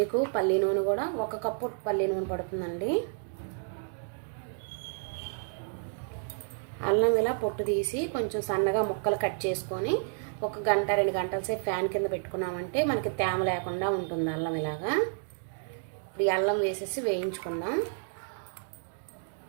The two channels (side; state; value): left; silent; 57 dB below the other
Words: పల్లి నూనె కూడా 1 కప్పు పల్లి నూనె పడుతుందండి. అల్లం ఇలా పొట్టు తీసి కొంచెం సన్నగా ముక్కలు కట్ చేసుకొని 1 గంట 2 గంటల సేపు ఫ్యాన్ కింద పెట్టుకున్నామంటే మనకి తేమ లేకుండా ఉంటుంది అల్లం ఇలాగా. ఇప్పుడు ఈ అల్లం వేసేసి వేయించుకుందాం.